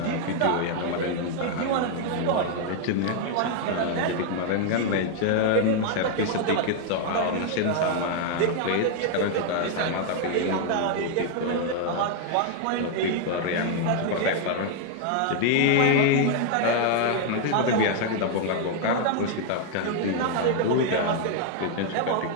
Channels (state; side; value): different; both; correlation 0.00